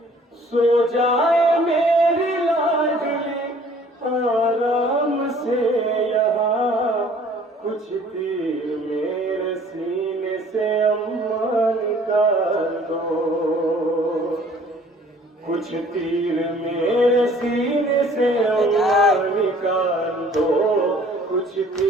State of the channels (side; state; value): both; normal; correlation 0.55